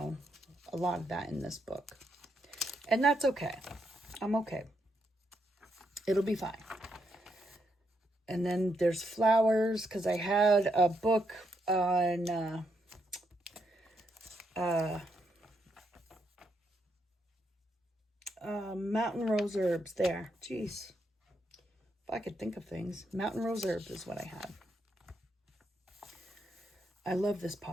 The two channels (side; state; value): both; normal; correlation 0.79